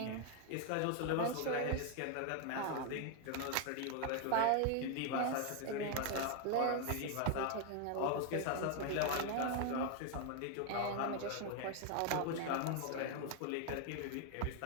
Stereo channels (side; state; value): both; different; correlation 0.00